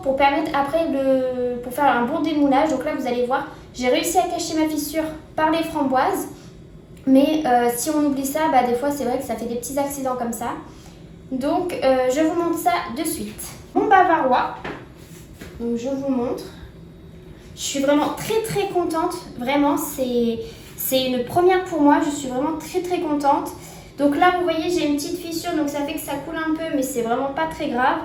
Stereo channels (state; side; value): identical; both; correlation 1.00